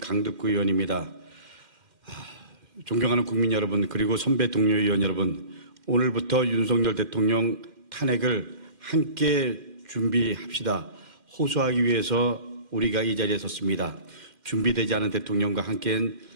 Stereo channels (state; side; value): late; left; 2.1 ms